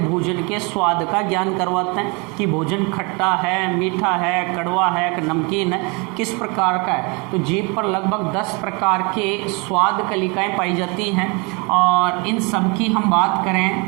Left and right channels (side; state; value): left; quieter; 30.3 dB